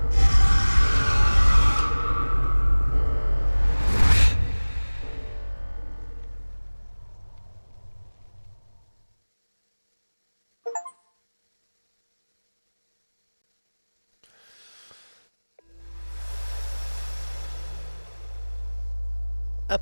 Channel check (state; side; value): inverted; both; correlation -1.00